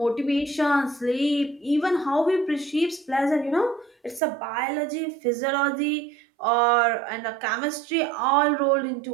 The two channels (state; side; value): drops out; left; at 4.2 s